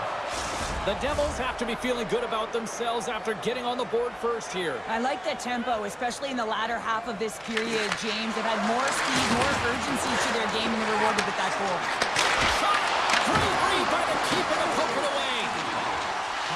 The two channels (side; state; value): both; identical; correlation 1.00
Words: The Devils have to be feeling good about themselves after getting on the board first here. I like the tempo, especially in the latter half of this period, James. They've had more speed, more urgency to their game, and they're rewarded with that goal. Shot! Great read by the keeper to poke it away.